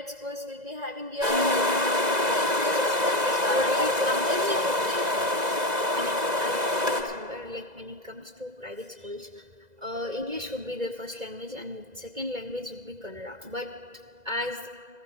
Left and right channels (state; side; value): late; left; 2.0 ms